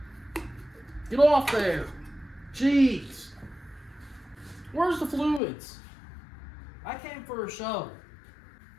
Get off there! Jeez! Where's the fluids? I came for a show.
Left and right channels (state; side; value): drops out; right; at 5.4 s